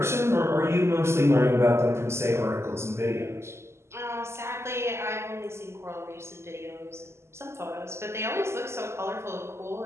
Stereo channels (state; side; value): late; left; 0.13 ms